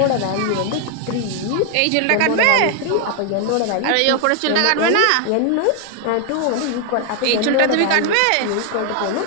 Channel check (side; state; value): both; different; correlation 0.00